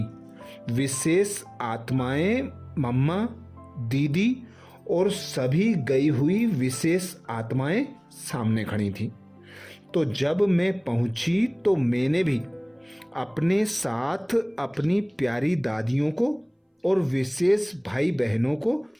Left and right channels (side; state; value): both; identical; correlation 1.00